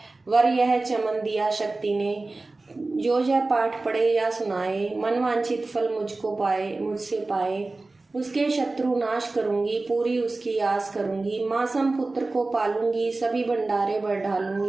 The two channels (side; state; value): left; quieter; 3.3 dB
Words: वर यह चमन दिया शक्ति ने। जो यह पाठ पढ़े या सुनाए, मनवांछित फल मुझको पाए मुझसे पाए। उसके शत्रु नाश करूंगी, पूरी उसकी आस करूंगी। मासम पुत्र को पालूंगी, सभी भंडारे बढ़